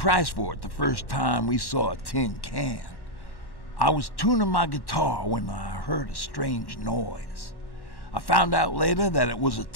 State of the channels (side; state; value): right; late; 1.1 ms